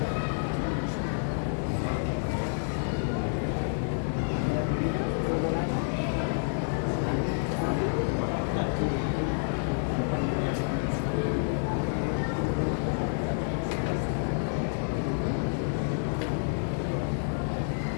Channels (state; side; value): silent; right; digital silence